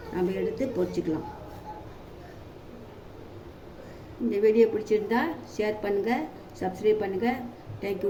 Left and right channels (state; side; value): identical; both; correlation 1.00